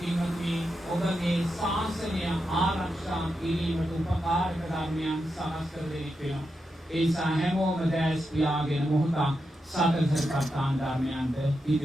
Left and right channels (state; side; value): normal; both; correlation 0.87